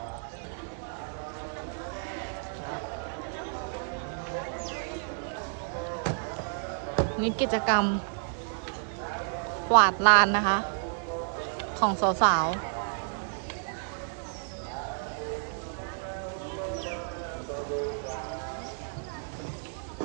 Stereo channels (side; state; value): left; silent; 57 dB below the other